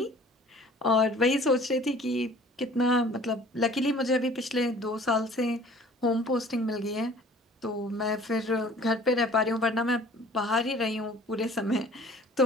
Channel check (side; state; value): both; normal; correlation 0.50